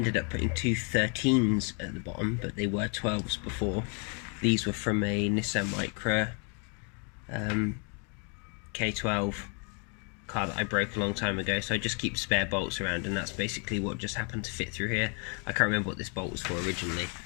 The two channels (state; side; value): quieter; right; 37.4 dB